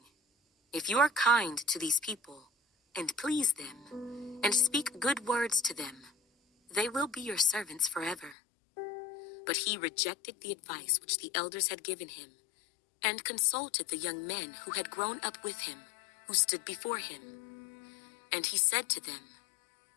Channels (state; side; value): drops out; right; at 8.3 s